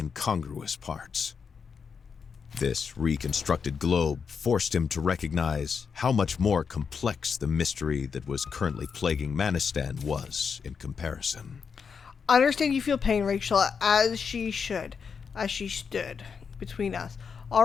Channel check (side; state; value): right; quieter; 6.1 dB